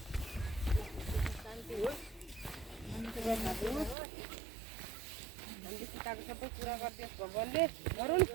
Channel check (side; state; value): left; drops out; at 4.0 s